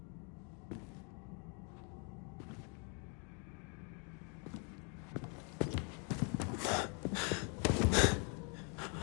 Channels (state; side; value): quieter; right; 37.3 dB